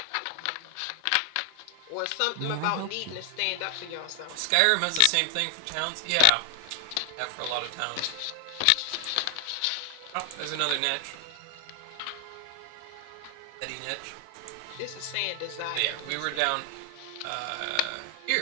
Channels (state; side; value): different; both; correlation 0.00